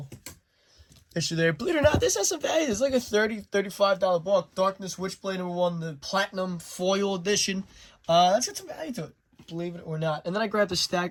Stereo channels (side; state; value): both; identical; correlation 1.00